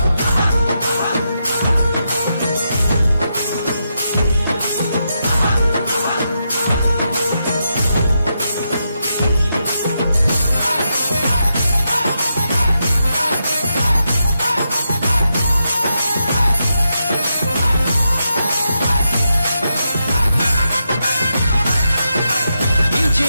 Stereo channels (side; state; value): both; inverted; correlation -0.84